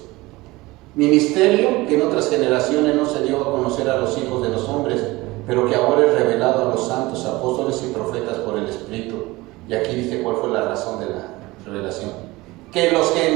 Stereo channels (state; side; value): quieter; left; 20.9 dB